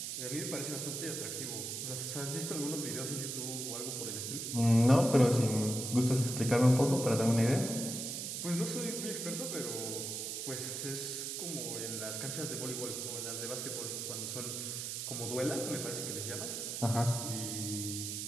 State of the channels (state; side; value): noise; right; hiss, 4 dB below the sound